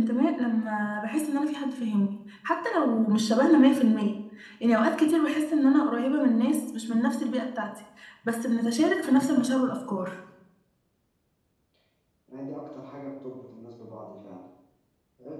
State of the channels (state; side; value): identical; both; correlation 1.00